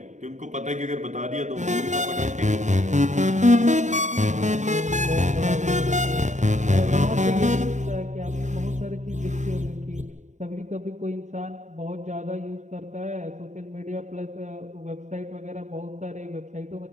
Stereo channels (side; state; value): left; late; 0.35 ms